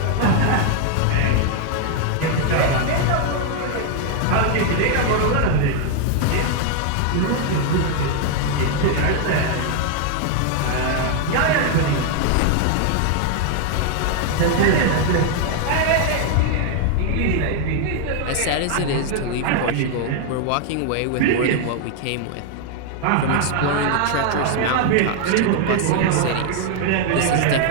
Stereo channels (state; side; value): different; both; correlation 0.00